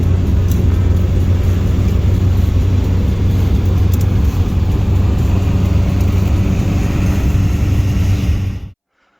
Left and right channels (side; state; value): both; identical; correlation 1.00